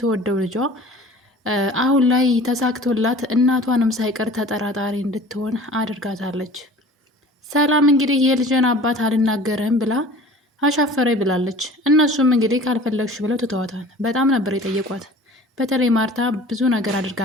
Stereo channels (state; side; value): normal; both; correlation 0.44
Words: ልጇ አሁን ላይ ተሳክቶላት እናቷንም ሳይቀር ተጠራጣሪ እንድትሆን አድርጋታለች። ሰላም እንግዲህ የልጅን አባት አልናገርም ብላ አሻፈረኝ ብላለች። እነሱም እንግዲህ ካልፈለግሽ ብለው ትተዋታል። በጣም ነበር የጠየቋት። በተለይ ማርታ ብዙ ነገር አድርጋ